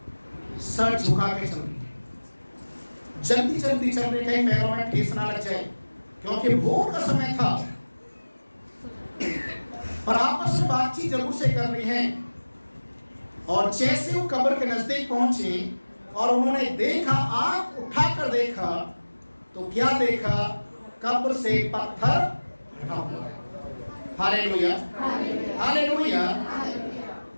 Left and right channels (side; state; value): both; inverted; correlation -1.00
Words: सर झुका के चल रही है, जल्दी जल्दी चल रही, कहीं पैरों में ठेस ना लग जाए क्योंकि भोर का समय था। पर आपस में बातचीत जरूर से कर रही हैं। और जैसे वो कब्र के नजदीक पहुंचे और उन्होंने देखा, आंख उठाकर देखा तो क्या देखा? कब्र से पत्थर हटा हुआ है। Hallelujah, hallelujah.